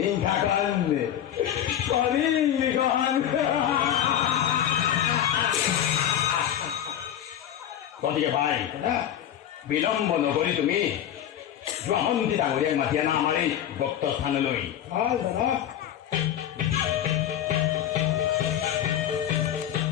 কৰিম গ্ৰহণ গতিকে ভাই বিলম্ব নকৰি তুমি যোৱা মন্ত্ৰী ডাঙৰীয়াক মাতি আনা আমাৰ এই ভক্ত স্থানলৈ। ভাল দাদা।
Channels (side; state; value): right; quieter; 10.5 dB